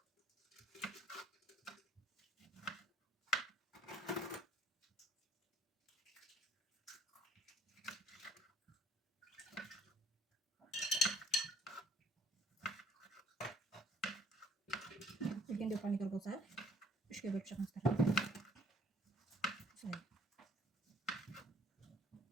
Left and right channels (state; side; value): normal; both; correlation 0.60